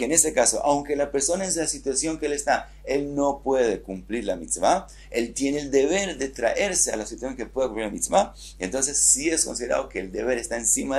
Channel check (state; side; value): identical; both; correlation 1.00